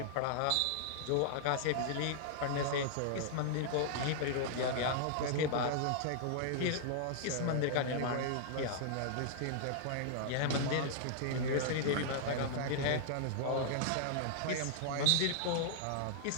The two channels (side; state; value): both; different; correlation -0.01